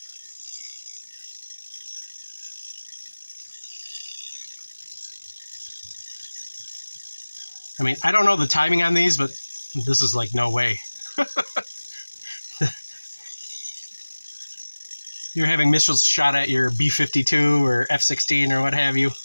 I mean, I don't know the timing on these, but this is like no way. You're having missiles shot at your B-52 or F-16 or what have you.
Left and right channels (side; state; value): both; inverted; correlation -1.00